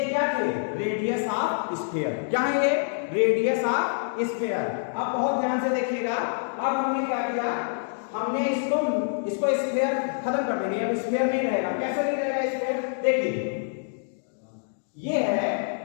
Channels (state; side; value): silent; right; digital silence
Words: क्या थे, रेडियस ऑफ स्फीयर, क्या है ये, रेडियस ऑफ स्फीयर। अब बहुत ध्यान से देखिएगा, अब हमने क्या किया, हमने इसको स्फीयर खत्म कर देंगे, अब स्फीयर नहीं रहेगा, कैसे नहीं रहेगा स्फीयर, देखिए ये है,